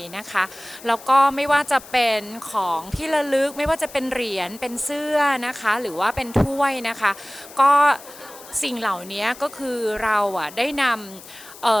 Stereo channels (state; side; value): noise; left; hiss, 18 dB below the sound